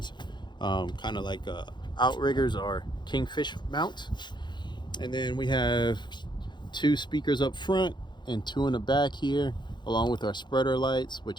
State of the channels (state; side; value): late; right; 0.22 ms